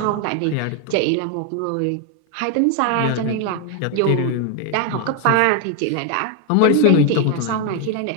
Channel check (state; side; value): different; both; correlation 0.01